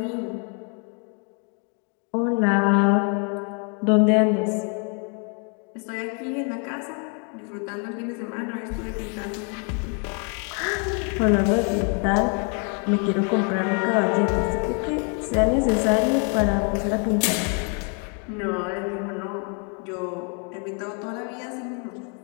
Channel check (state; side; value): quieter; right; 38.6 dB